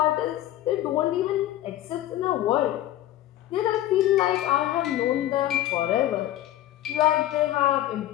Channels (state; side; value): quieter; right; 13.7 dB